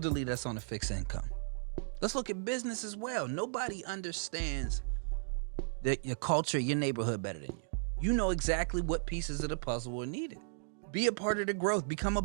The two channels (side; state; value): left; silent; digital silence